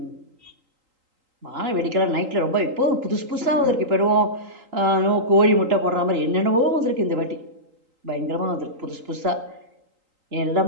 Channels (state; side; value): late; left; 3.8 ms